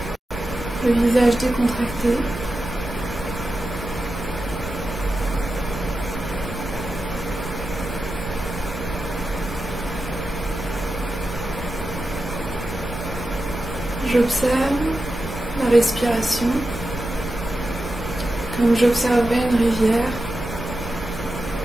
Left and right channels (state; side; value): normal; both; correlation 0.91